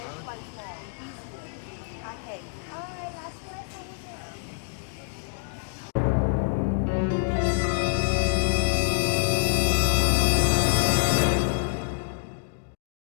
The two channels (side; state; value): right; silent; digital silence